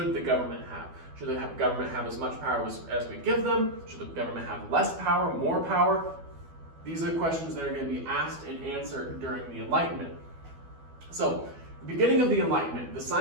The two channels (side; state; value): left; late; 12 ms